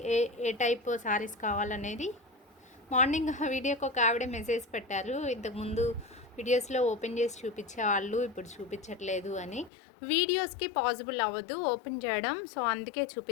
ఏ టైప్ శారీస్ కావాలనేది. మార్నింగ్ వీడియోకి ఒక ఆవిడ మెసేజ్ పెట్టారు, ఇంతకుముందు వీడియోస్లో ఓపెన్ చేసి చూపించేవాళ్ళు, ఇప్పుడు చూపించట్లేదు అని. వీడియోస్కి పాసిబుల్ అవ్వదు ఓపెన్ చేయడం, సో అందుకే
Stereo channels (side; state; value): right; drops out; at 9.7 s